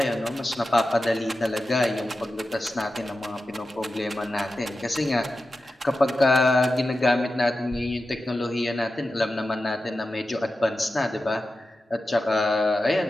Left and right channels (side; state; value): both; normal; correlation 0.92